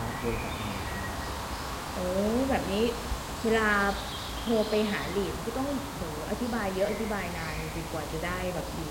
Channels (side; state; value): both; identical; correlation 1.00